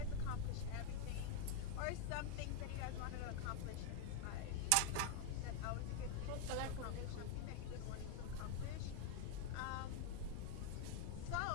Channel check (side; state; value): both; different; correlation 0.00